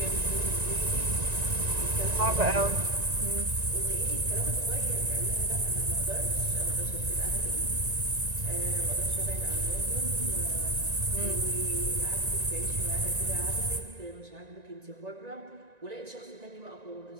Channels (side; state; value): left; late; 1.9 ms